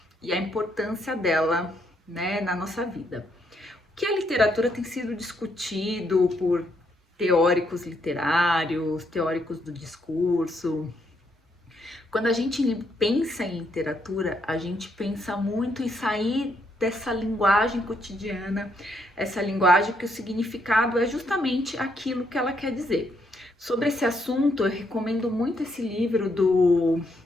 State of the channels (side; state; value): both; normal; correlation 0.75